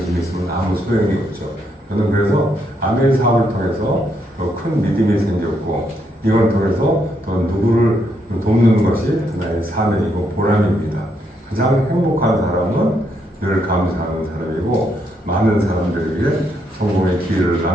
있으면 아무 소용이 없죠. 저는 그래서 아멘 사업을 통해서 더 큰 믿음이 생겼고 이걸 통해서 더 누구를 돕는 것이 하나의 사명이고 보람입니다. 가장 행복한 사람은 늘 감사하는 사람이고 많은 사람들에게 성공의 기회를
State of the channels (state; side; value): normal; both; correlation 0.76